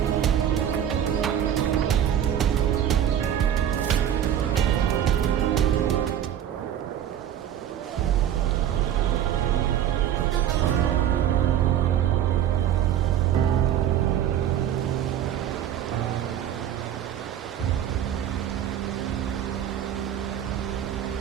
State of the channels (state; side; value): quieter; left; 10.3 dB